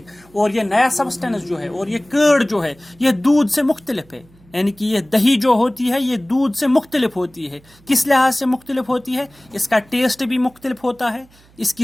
और ये नया सब्सटेंस जो है और ये कर्ड जो है, ये दूध से मुख्तलिफ है। यानी कि ये दही जो होती है ये दूध से मुख्तलिफ होती है। किस लिहाज से मुख्तलिफ होती है? इसका टेस्ट भी मुख्तलिफ होता है,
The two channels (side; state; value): right; noise; hum, 29 dB below the sound